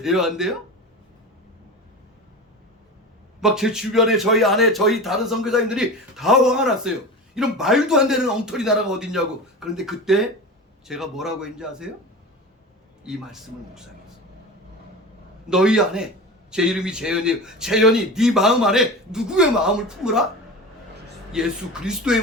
안 돼요? 막 제 주변에 저희 안에 저희 다른 선교사님들이 다 화가 났어요. 이런 말도 안 되는 엉터리 나라가 어딨냐고. 그런데 그때 제가 뭐라고 했는지 아세요? 이 말씀을 묵상했어요. 너희 안에 제 이름이 재현이에요. 재현이 네 마음 안에 누구의 마음을 품으라? 예수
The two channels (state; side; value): normal; both; correlation 0.30